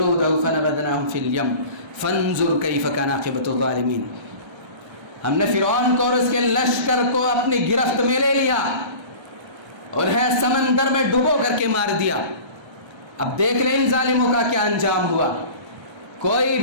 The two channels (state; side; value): late; left; 1.3 ms